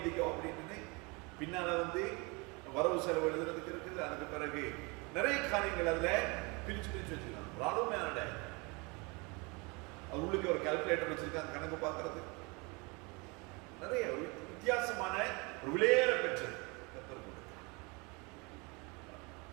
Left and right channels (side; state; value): left; quieter; 28.4 dB